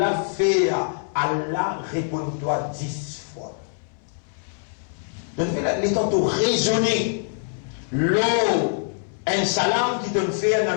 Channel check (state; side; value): silent; right; 63 dB below the other